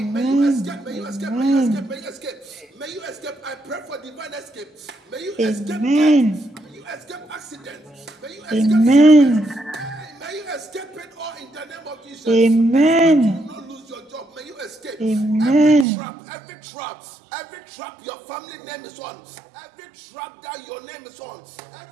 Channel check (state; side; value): drops out; left; at 15.9 s